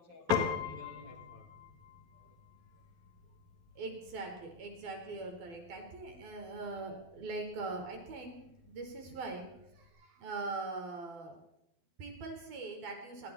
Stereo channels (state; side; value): late; left; 12 ms